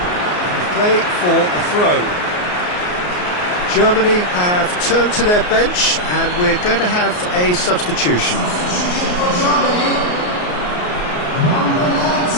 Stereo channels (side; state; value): right; late; 33 ms